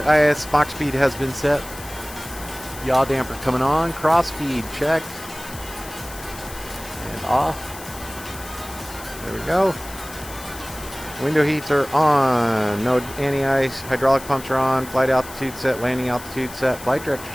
IS Mach speed has been set. Yaw damper coming on. Cross feed checked. And off. There we go. Window heats are on. No anti-ice. Hydraulic pumps are on. Flight altitude set. Landing altitude set. Flight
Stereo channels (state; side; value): noise; left; hiss, 15 dB below the sound